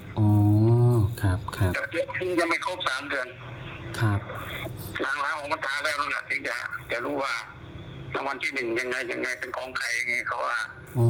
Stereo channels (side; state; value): both; identical; correlation 1.00